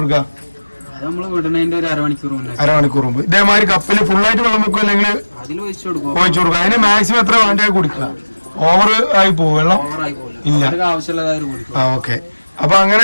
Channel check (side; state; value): both; inverted; correlation -1.00